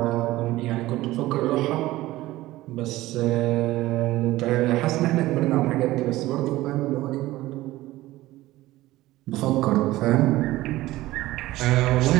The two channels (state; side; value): quieter; left; 17.1 dB